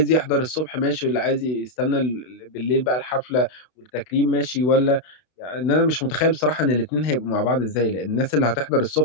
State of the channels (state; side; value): late; right; 32 ms